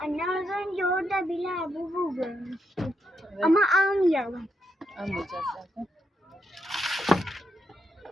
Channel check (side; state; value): both; normal; correlation 0.81